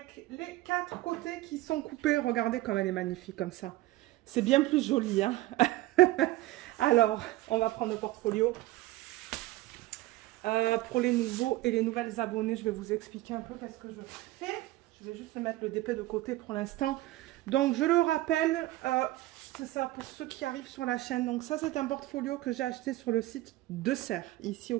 les 4 côtés qui sont coupés. Regardez comme elle est magnifique comme ça. C'est bien plus joli, hein. Alors, on va prendre le portfolio. Pour les nouveaux et les nouvelles abonnés, je vais vous expliquer un peu qu'est-ce que je fais. Je vais juste mettre le DP de côté pour l'instant. Donc, je le rappelle... c'est ça, pour ceux qui arrivent sur la chaîne. Donc ça, c'est un portfolio que j'ai acheté sur le site de Serre, ici au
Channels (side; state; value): left; quieter; 17.5 dB